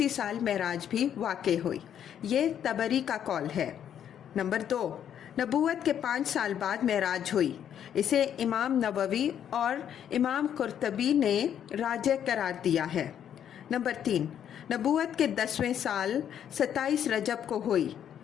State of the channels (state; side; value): quieter; right; 9.4 dB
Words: سال معراج بھی واقع ہوئی، یہ طبری کا قول ہے۔ نمبر 2، نبوت کے 5 سال بعد معراج ہوئی، اسے امام نووی اور امام قرطبی نے راجح قرار دیا ہے۔ نمبر 3، نبوت کے 10ویں سال 27 رجب کو ہوئی،